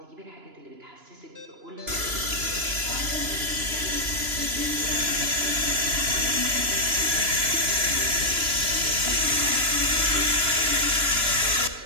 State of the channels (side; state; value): left; late; 2.9 ms